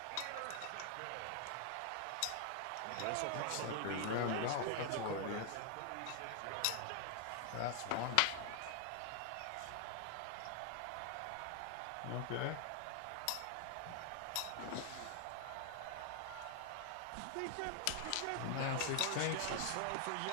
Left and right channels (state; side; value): different; both; correlation 0.00